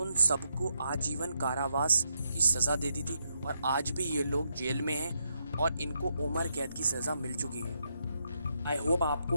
सबको आजीवन कारावास की सज़ा दे दी थी, और आज भी ये लोग जेल में हैं और इनको उम्र कैद की सज़ा मिल चुकी है। आई होप आपको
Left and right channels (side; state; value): both; inverted; correlation -0.80